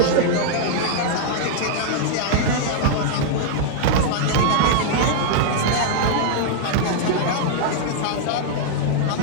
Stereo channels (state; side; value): different; both; correlation -0.01